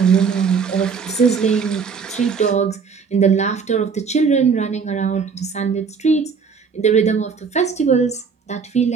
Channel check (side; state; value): left; quieter; 5.7 dB